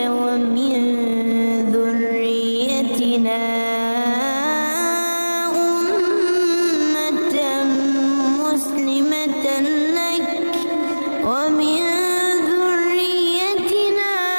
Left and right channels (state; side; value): inverted; both; correlation -1.00